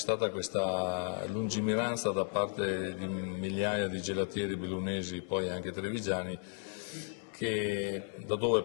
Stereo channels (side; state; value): right; silent; 55 dB below the other